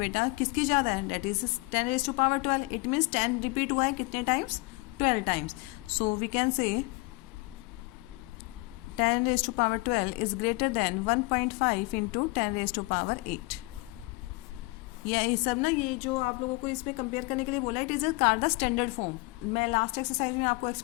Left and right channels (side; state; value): right; quieter; 24.6 dB